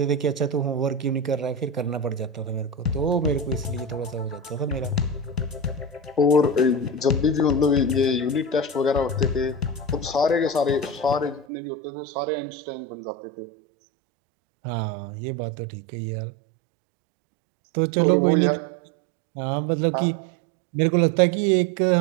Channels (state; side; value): drops out; left; at 11.5 s